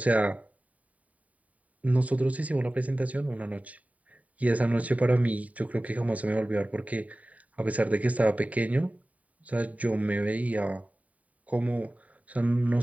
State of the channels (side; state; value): left; late; 0.070 ms